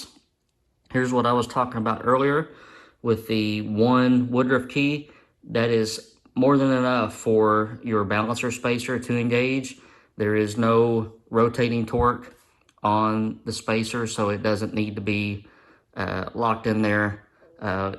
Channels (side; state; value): both; identical; correlation 1.00